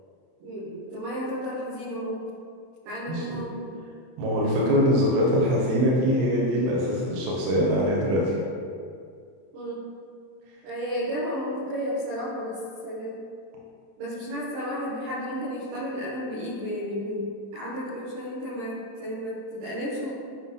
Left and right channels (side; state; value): left; late; 31 ms